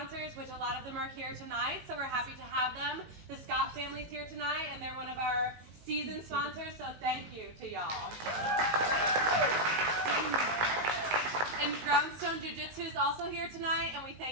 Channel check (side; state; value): left; late; 18 ms